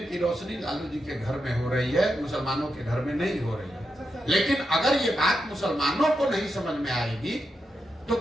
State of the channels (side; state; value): both; normal; correlation 0.86